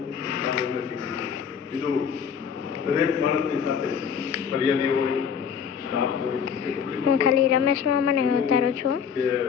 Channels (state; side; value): quieter; right; 7.2 dB